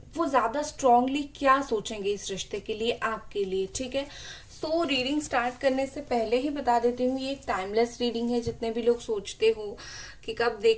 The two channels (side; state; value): both; identical; correlation 1.00